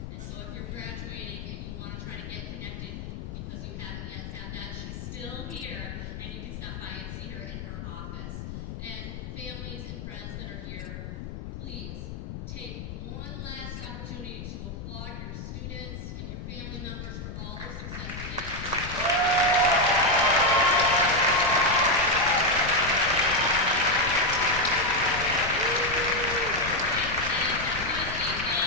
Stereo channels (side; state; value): left; noise; rumble, 8 dB below the sound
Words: So if you're graduating and you want to try to get connected because you haven't yet had that, she's still here, and you can stop by and see her in her office. And families and friends that are here, please take one last opportunity to applaud your students and your family members